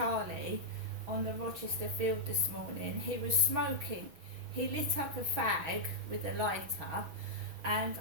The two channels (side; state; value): left; late; 6.1 ms